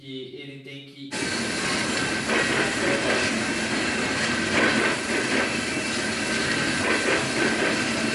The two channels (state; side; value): identical; both; correlation 1.00